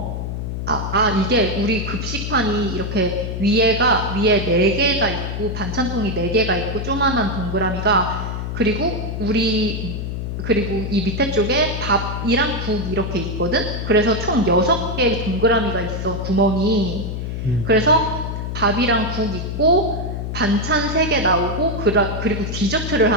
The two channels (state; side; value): noise; left; hum, 4 dB below the sound